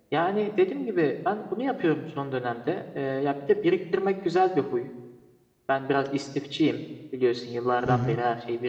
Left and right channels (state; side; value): identical; both; correlation 1.00